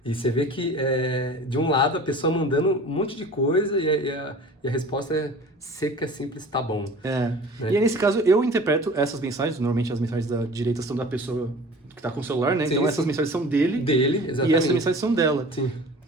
E você vê que, de um lado, a pessoa mandando um monte de coisa e a resposta é seca, simples, tá bom. Né? E aí, nesse caso, eu interpreto essas mensagens, normalmente as mensagens da direita são da pessoa que tá com o celular, né? Sim, então, essas mensagens são dele. Dele, exatamente. E essas mensagens são dela. Sim.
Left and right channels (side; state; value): both; normal; correlation 0.42